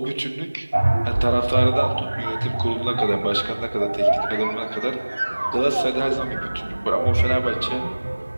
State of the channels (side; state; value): both; inverted; correlation -1.00